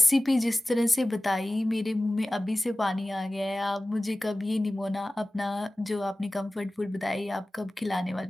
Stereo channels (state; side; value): normal; both; correlation 0.97